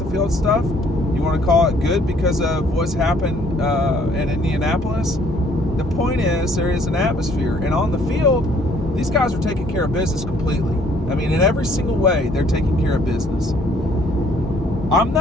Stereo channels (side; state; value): both; normal; correlation 0.61